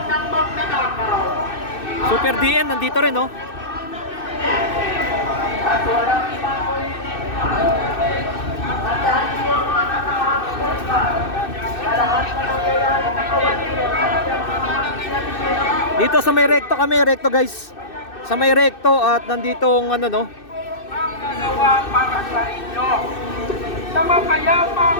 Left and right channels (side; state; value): right; late; 2.6 ms